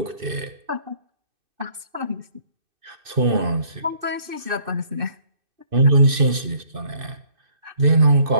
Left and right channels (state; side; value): late; left; 2.6 ms